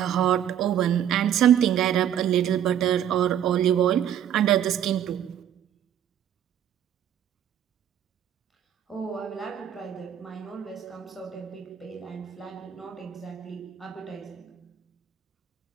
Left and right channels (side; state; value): left; quieter; 10.0 dB